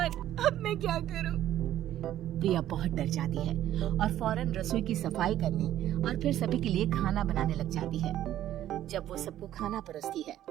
अब मैं क्या करूं? प्रिया बहुत डर जाती है और फौरन रसोई की सफाई करने और फिर सभी के लिए खाना बनाने लग जाती है। जब वो सबको खाना परोसती है,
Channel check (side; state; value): left; quieter; 12.5 dB